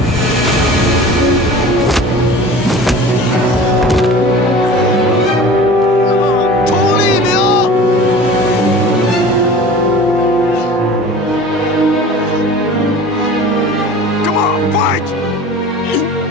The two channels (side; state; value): both; normal; correlation 0.40